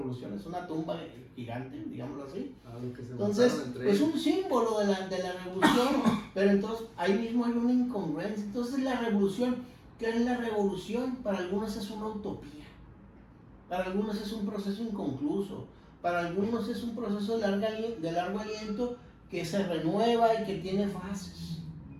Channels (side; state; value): both; identical; correlation 1.00